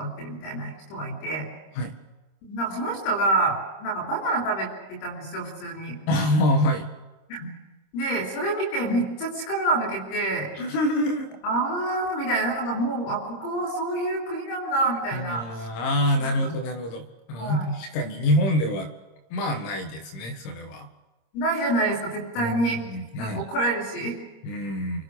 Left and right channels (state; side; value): late; right; 26 ms